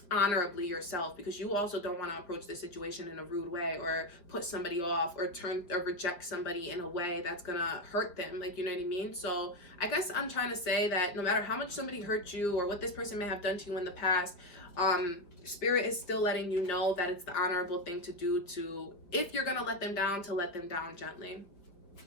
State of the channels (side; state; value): right; late; 5.0 ms